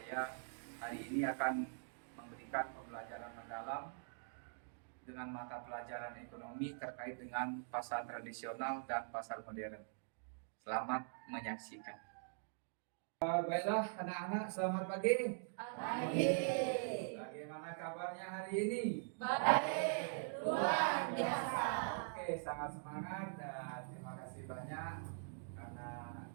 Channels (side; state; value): left; silent; digital silence